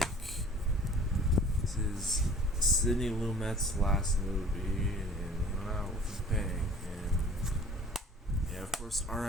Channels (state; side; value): normal; both; correlation 0.48